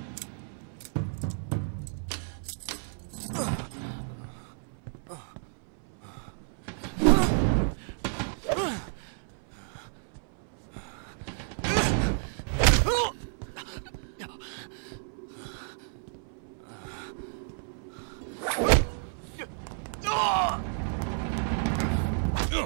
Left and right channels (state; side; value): silent; left; 57 dB below the other